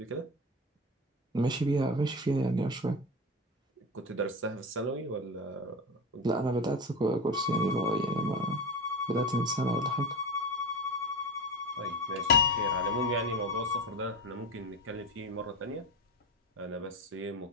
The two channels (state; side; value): normal; both; correlation 0.24